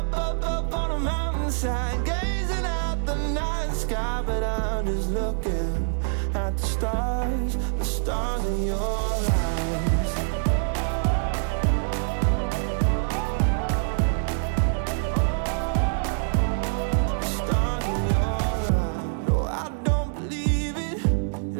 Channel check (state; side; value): silent; left; digital silence